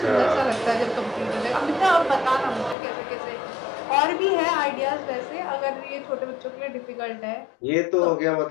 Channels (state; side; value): drops out; right; at 2.8 s